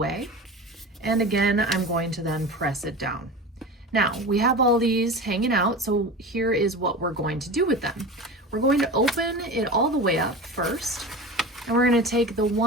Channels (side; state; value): both; normal; correlation 0.31